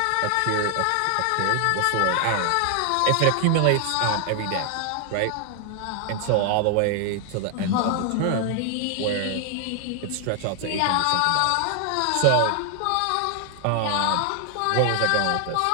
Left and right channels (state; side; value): different; both; correlation 0.00